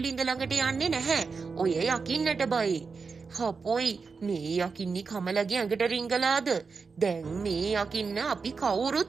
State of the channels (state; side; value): quieter; left; 4.9 dB